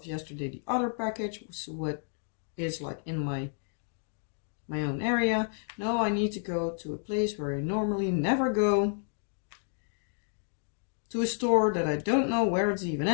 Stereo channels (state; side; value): silent; right; 57 dB below the other